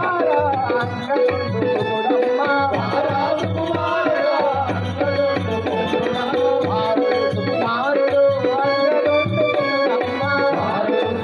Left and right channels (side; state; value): both; identical; correlation 1.00